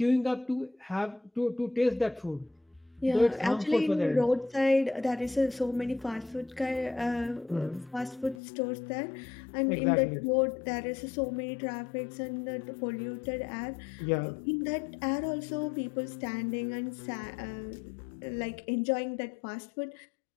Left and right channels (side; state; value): right; drops out; at 8.4 s